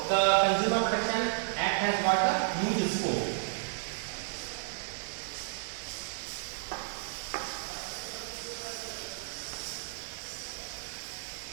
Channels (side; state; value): left; silent; digital silence